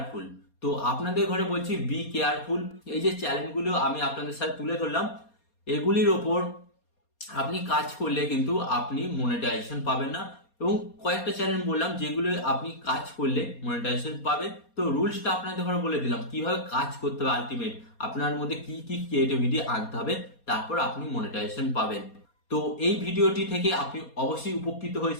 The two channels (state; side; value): late; right; 4.2 ms